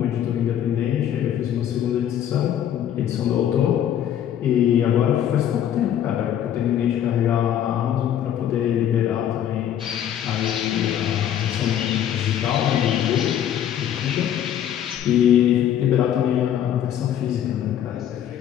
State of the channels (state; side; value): quieter; right; 10.3 dB